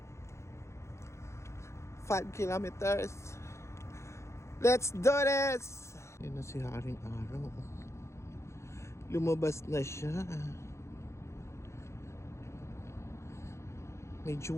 5 kilometers. Let's do this! Yan na si Haring Araw. Lumabas na siya. Medyo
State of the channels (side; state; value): right; late; 0.14 ms